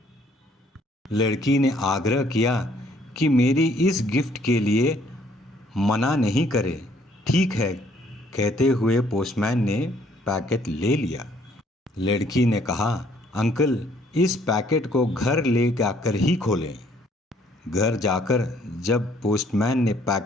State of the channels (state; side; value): normal; both; correlation 0.63